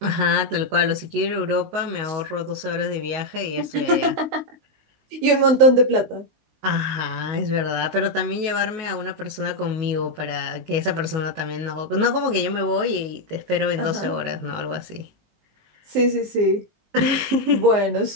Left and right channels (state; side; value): late; left; 19 ms